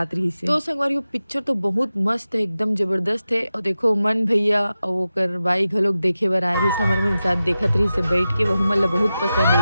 रही से। तो संगवारी पिक्चर तो बहुत मस्त है, एकदम जबरदस्त है। और देखो मन भैया और वो कर बाई घलोक देखे बर आए रही से, हमारे मन साथ देखत रही से बैठ के, वह मतलब बहुत पसंद है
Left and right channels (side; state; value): both; inverted; correlation -0.93